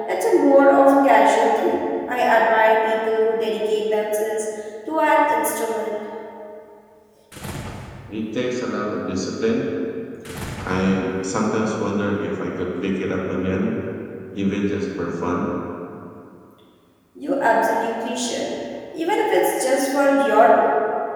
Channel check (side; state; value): both; identical; correlation 1.00